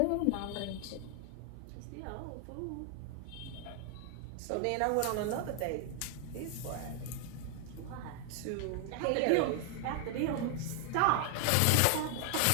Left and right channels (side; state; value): both; different; correlation 0.00